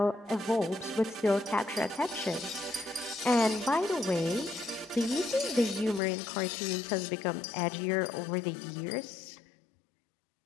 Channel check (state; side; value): drops out; right; at 6.0 s